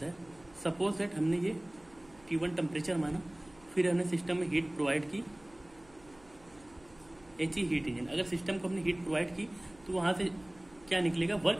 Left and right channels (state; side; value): noise; right; hum, 26 dB below the sound